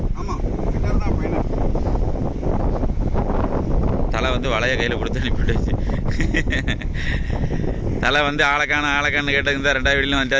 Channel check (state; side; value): identical; both; correlation 1.00